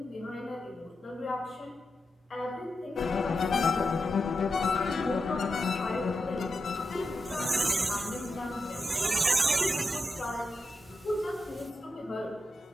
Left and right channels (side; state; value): both; normal; correlation 0.88